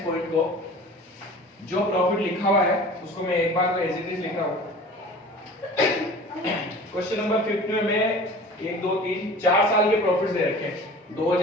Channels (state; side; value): normal; both; correlation 0.41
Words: पॉइंट को, जो प्रॉफिट लिखा हुआ है उसको मैं एक बार एज इट इज लिख रहा हूं। क्वेश्चन नंबर 5 में 1 2 3 4 साल के प्रॉफिट्स दे रखे हैं,